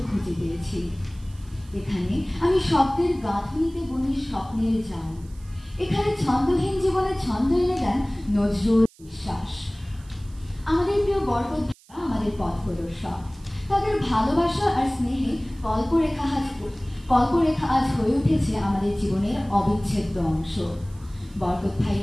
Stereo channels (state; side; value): noise; right; hiss, 27 dB below the sound